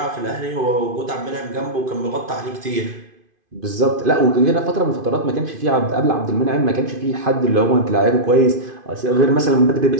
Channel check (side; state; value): left; late; 2.5 ms